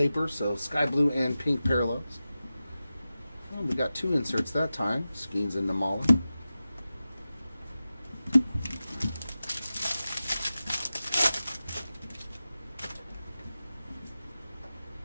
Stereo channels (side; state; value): both; inverted; correlation -0.94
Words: so sky blue and pink parallels. Well, we got 2 inserts that time, Skeens and Namala.